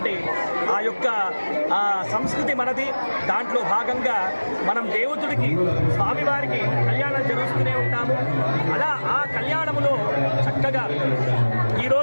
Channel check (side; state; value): both; inverted; correlation -1.00